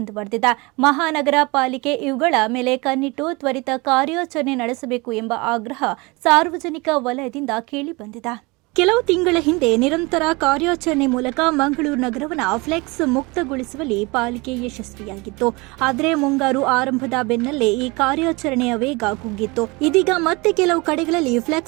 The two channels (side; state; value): left; quieter; 25.5 dB